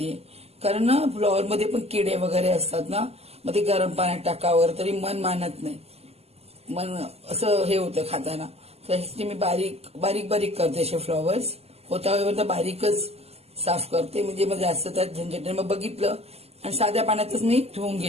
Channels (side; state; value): left; late; 0.29 ms